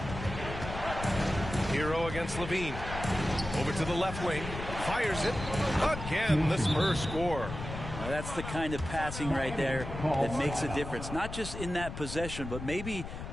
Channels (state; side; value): noise; left; rumble, 8 dB below the sound